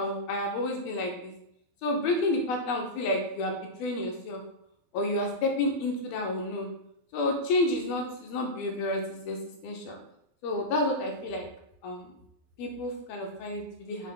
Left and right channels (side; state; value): right; late; 12 ms